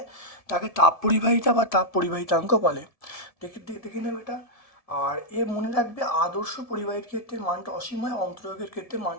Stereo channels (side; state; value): right; late; 1.7 ms